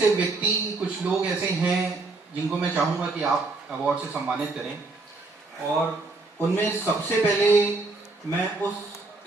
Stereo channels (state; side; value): quieter; left; 3.4 dB